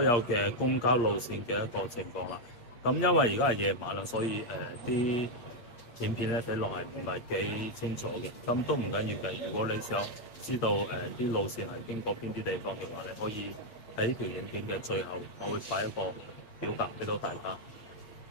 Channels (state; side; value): late; right; 8.5 ms